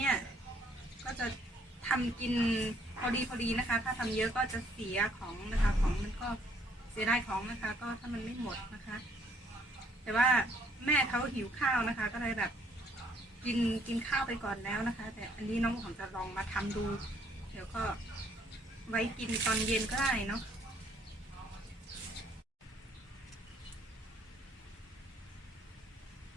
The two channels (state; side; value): normal; both; correlation 0.65